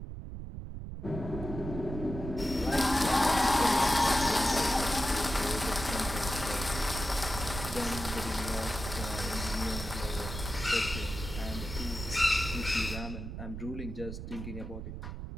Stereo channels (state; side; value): noise; right; rumble, 7 dB below the sound